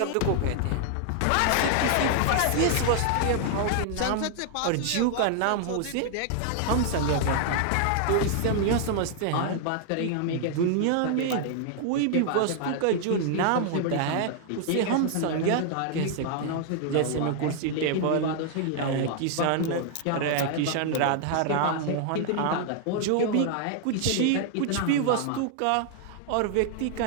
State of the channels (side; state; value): both; different; correlation 0.00